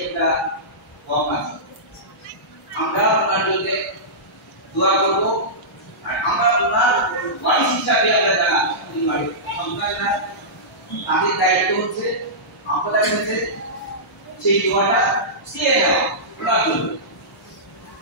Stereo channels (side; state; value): both; normal; correlation -0.17